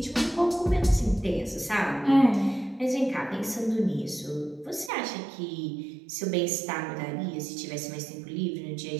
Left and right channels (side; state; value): left; drops out; at 4.9 s